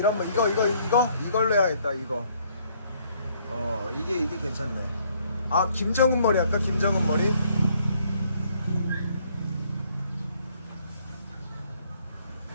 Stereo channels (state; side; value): inverted; both; correlation -0.65